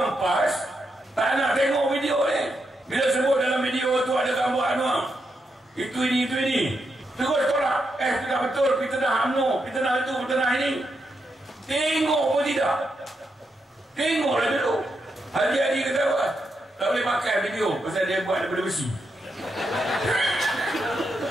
PAS, tak nak tengok video ni. Bila sebut dalam video tu ada gambar Anwar, itu ini. Terus tolak. Tidak betul, fitnah UMNO, fitnah itu, fitnah ini. Tengok pun tidak. Tengoklah dulu. Haji Adi kata apa? Tak boleh pakai video pasal dia buat daripada besi.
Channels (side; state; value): both; normal; correlation 0.83